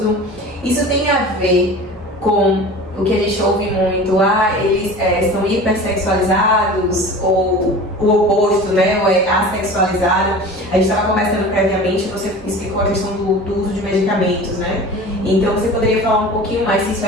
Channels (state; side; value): normal; both; correlation 0.38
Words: Isso tem a ver com o que a gente ouve muito, eles são hipersexualizados, ou o oposto, né, ou assexualizado. A gente estava conversando previamente, você explicou a questão do uso de medicamentos, né? Então você poderia falar um pouquinho mais se isso